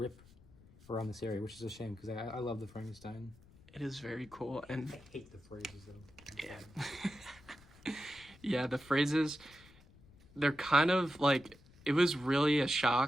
around this area, which is a shame, because I love the Frankenstein. It is very cool. And I hate the phrases, though. Yeah. Yeah, the phrases, they're kind of like, it was really a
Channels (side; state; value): left; noise; rumble, 24 dB below the sound